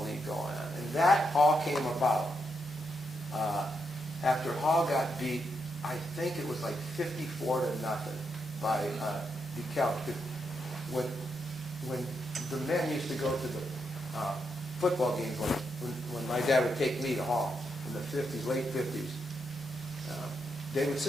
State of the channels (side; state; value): both; normal; correlation 0.81